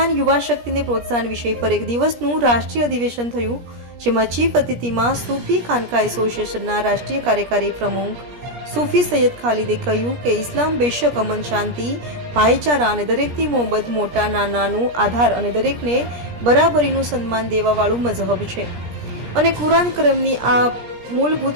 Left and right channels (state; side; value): late; left; 17 ms